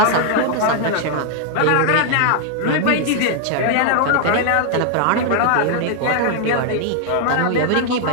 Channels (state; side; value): different; both; correlation 0.00